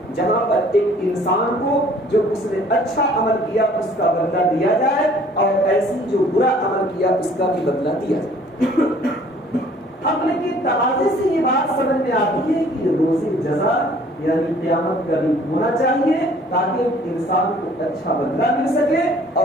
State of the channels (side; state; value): both; normal; correlation 0.55